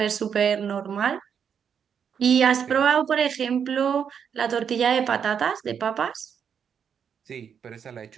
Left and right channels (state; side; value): quieter; left; 7.5 dB